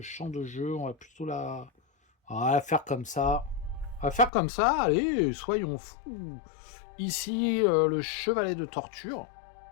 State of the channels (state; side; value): drops out; right; at 4.3 s